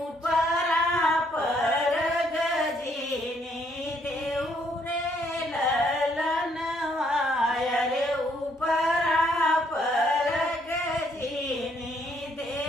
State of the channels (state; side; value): normal; both; correlation 0.69